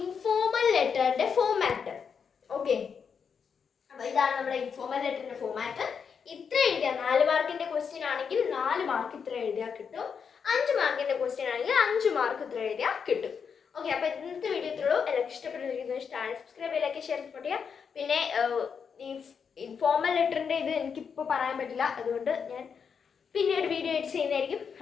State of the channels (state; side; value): quieter; right; 6.5 dB